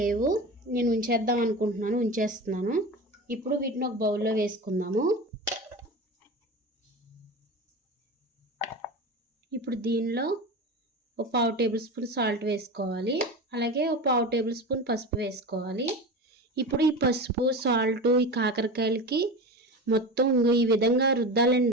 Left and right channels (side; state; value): both; normal; correlation 0.28